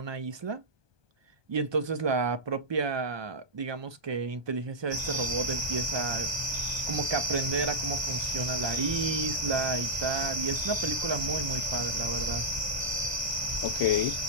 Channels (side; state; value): left; late; 1.2 ms